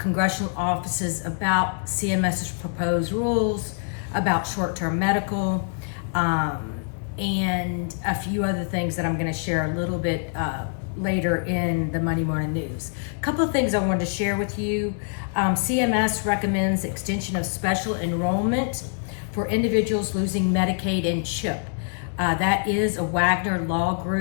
offices about CMS's proposed rules, about short-term medical, and a few other things that I'm going to share a little bit later in the Monday Morning News. A couple of things I wanted to share with you. CMS recommends extension of special enrollment for individuals losing Medicaid and CHIP. That is a Wagner Law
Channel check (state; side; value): silent; right; 57 dB below the other